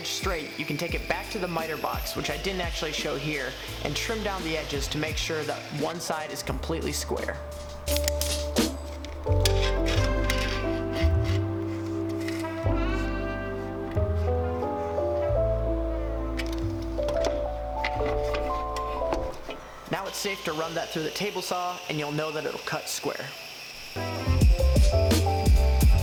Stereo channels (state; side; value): identical; both; correlation 1.00